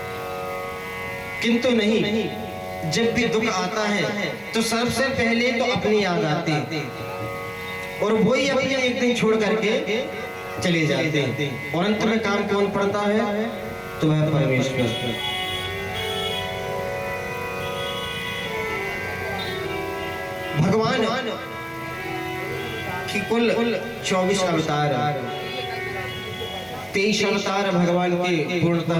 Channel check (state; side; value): identical; both; correlation 1.00